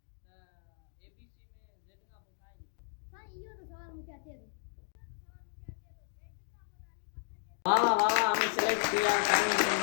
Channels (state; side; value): silent; right; digital silence